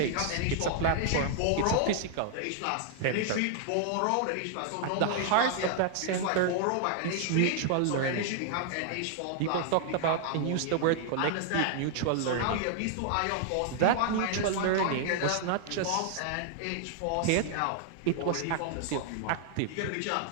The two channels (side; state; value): both; different; correlation -0.01